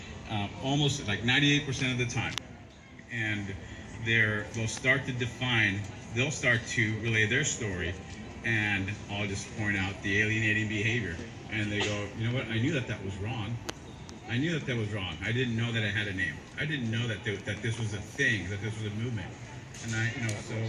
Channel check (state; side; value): identical; both; correlation 1.00